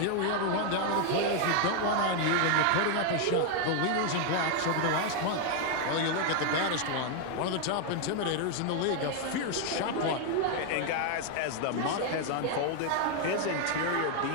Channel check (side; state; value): both; different; correlation 0.00